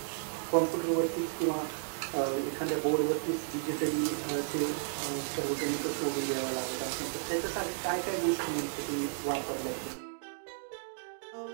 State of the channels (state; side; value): silent; left; digital silence